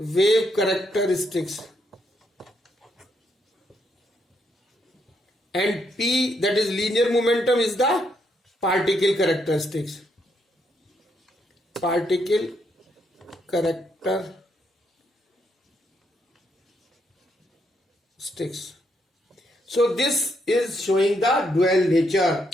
characteristics, and p, that is linear momentum, is the particle characteristics. Particle characteristics. So this is showing the dual nature.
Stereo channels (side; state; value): both; normal; correlation 0.77